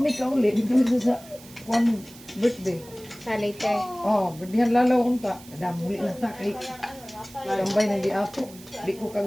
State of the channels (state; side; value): noise; right; hiss, 20 dB below the sound